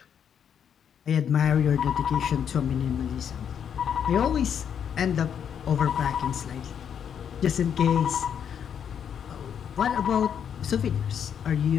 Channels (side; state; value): right; quieter; 8.2 dB